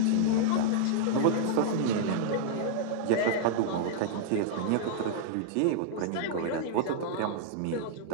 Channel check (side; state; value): both; different; correlation -0.01